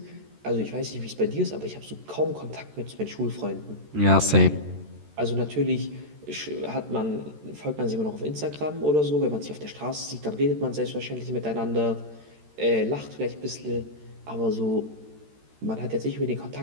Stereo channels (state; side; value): late; left; 13 ms